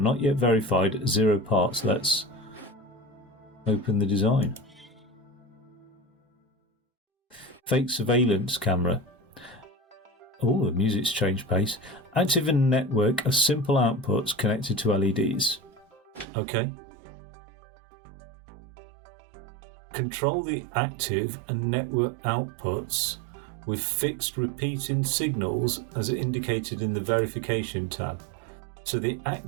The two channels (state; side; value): drops out; left; at 16.2 s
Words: not yet verified, 0 parts. Let's open the design. Fake surveillance camera. Oh, the music's changed pace. Active and network are simple outputs connected to LEDs. Okay. Control the active and network outputs with fixed repeating signals as indicated in the verification tab. So the